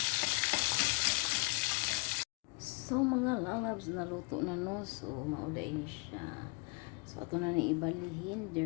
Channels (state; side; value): quieter; right; 32.8 dB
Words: So mga lalabs, naluto na no. So mauda ini siya. So ato na ni ibalihin